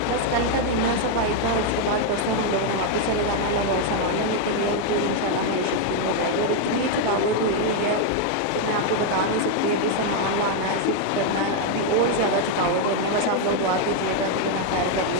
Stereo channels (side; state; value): both; different; correlation 0.01